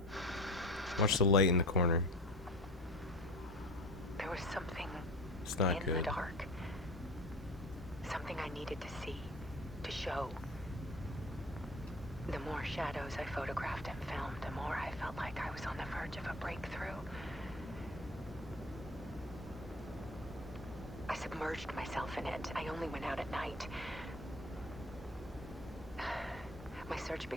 Watch the light in the corner. There was something It's not in the good. dark. Something I needed to see, to show. The more shadows I photographed and filmed, the more I felt like I was on the verge of a breakthrough. I submerged myself in it. I only went out at night. My search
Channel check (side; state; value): both; normal; correlation 0.38